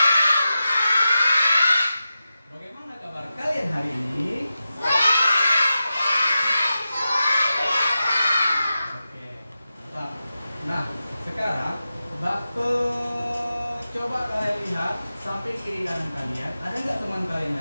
Pak. Bagaimana kabar kalian hari ini? Sehat, luar biasa. Oke, mantap. Nah, sekarang coba kalian lihat samping kiri kanan kalian. Ada nggak teman kalian yang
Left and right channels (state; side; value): inverted; both; correlation -0.92